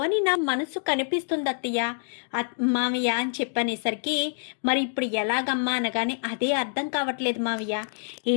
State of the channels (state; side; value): silent; right; digital silence